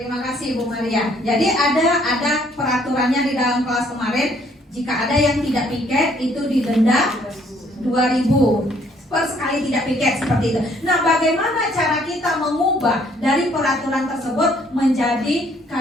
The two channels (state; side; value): normal; both; correlation 0.64